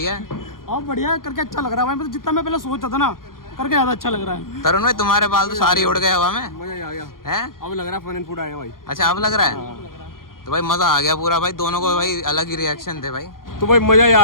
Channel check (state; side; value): late; right; 0.91 ms